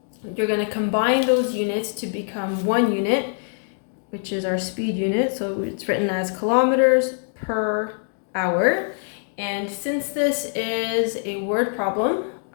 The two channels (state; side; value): silent; right; digital silence